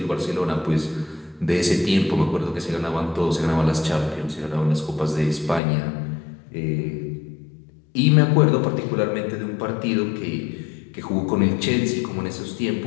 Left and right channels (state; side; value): drops out; right; at 5.6 s